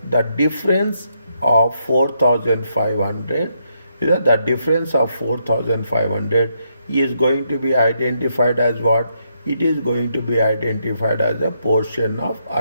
the difference of 4,500? Is that the difference of 4,500 is going to be identified as what? It is going to be identified as a portion of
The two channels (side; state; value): both; inverted; correlation -0.78